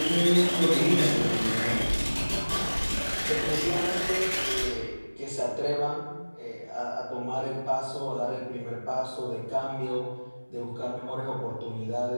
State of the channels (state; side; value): inverted; both; correlation -1.00